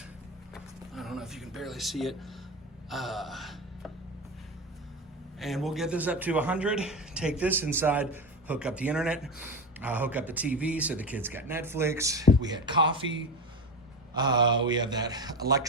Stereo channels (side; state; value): both; normal; correlation 0.22